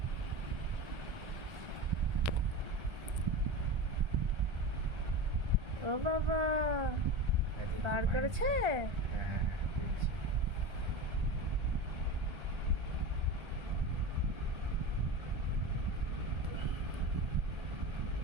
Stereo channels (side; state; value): left; late; 1.3 ms